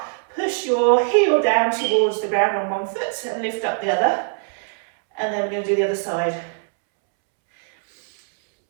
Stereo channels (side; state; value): left; silent; 65 dB below the other